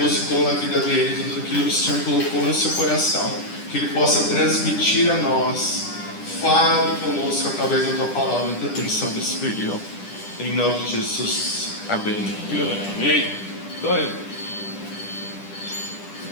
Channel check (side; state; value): right; late; 10 ms